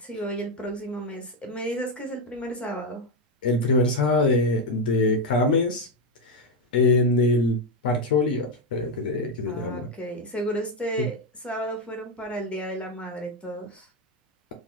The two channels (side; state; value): both; normal; correlation 0.07